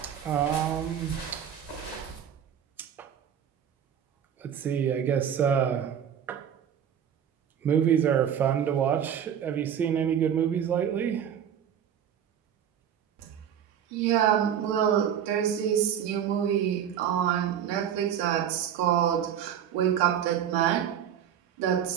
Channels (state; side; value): quieter; left; 9.1 dB